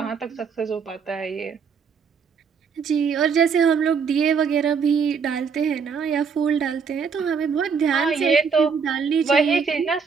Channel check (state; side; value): quieter; left; 6.0 dB